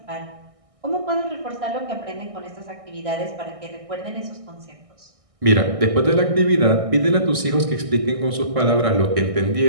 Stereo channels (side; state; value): left; late; 1.6 ms